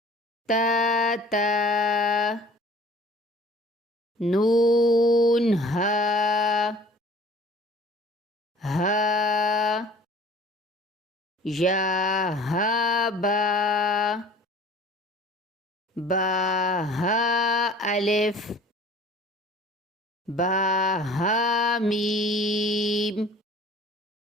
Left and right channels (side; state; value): both; normal; correlation 0.48